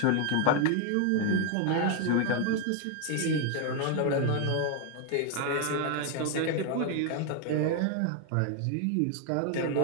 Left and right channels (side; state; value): both; different; correlation 0.01